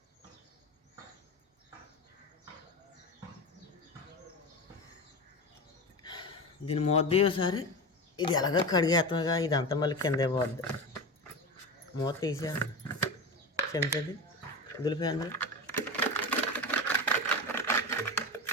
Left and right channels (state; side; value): normal; both; correlation 0.23